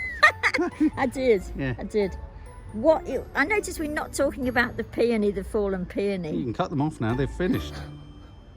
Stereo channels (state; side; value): identical; both; correlation 1.00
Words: I did. Yeah. I did. I noticed we're not talking about the peony, the fallen You peony. can cut them off now. They've finished.